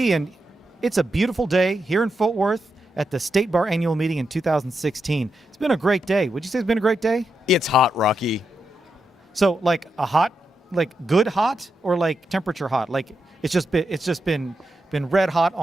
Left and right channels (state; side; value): normal; both; correlation 0.85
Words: and it's a beautiful day here in Fort Worth at the State Bar Annual Meeting in 2016. It's been a great day. Would you say it's been a great day? It's hot, Rocky. So, like a hot, like good hot, or like temperature hot? Like it's just been red hot